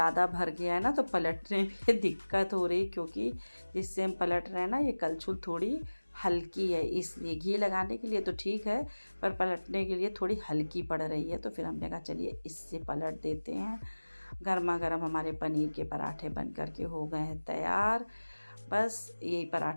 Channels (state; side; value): inverted; both; correlation -1.00